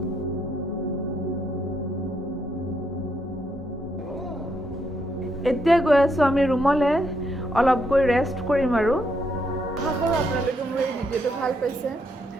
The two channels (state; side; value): normal; both; correlation 0.76